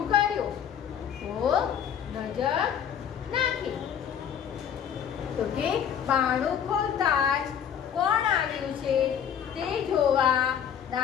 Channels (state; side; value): quieter; right; 8.6 dB